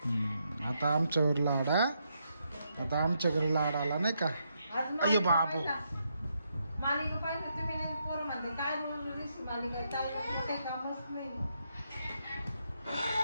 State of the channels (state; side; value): inverted; both; correlation -0.79